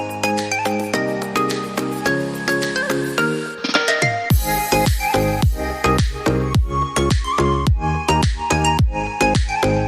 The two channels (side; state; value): both; identical; correlation 1.00